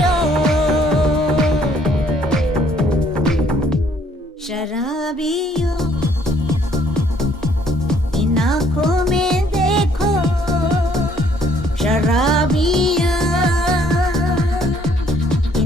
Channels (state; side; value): normal; both; correlation 0.64